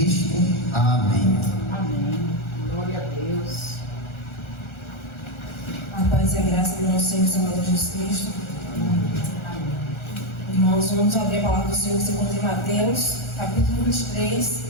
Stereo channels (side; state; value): right; late; 1.4 ms